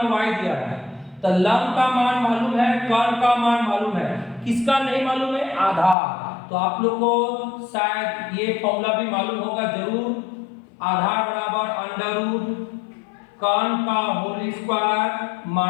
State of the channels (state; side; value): drops out; right; at 6.0 s